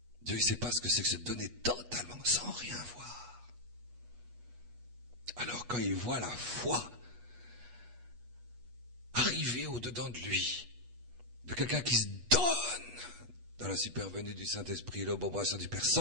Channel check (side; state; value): left; late; 8.3 ms